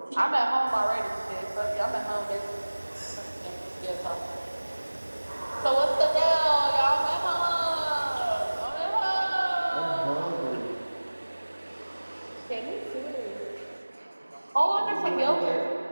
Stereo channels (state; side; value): inverted; both; correlation -1.00